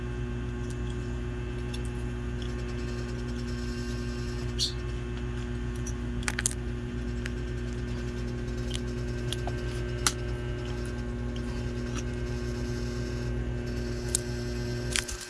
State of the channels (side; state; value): both; identical; correlation 1.00